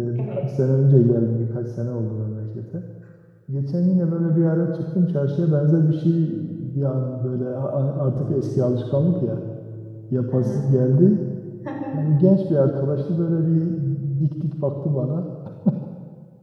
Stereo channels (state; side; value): identical; both; correlation 1.00